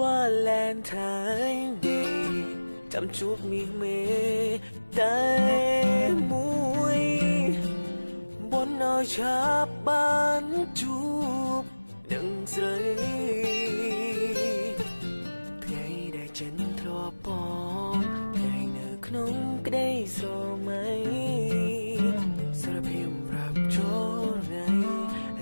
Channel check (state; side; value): inverted; both; correlation -1.00